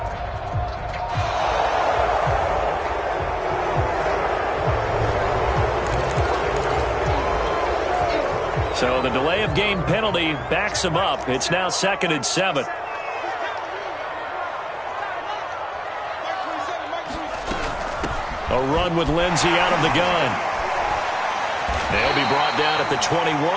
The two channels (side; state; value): both; identical; correlation 1.00